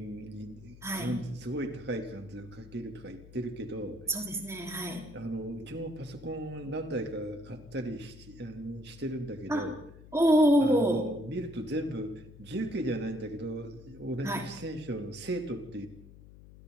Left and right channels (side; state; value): left; noise; hum, 18 dB below the sound